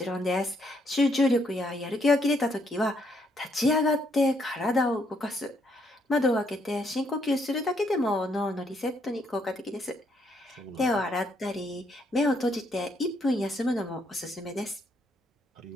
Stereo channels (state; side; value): normal; both; correlation 0.73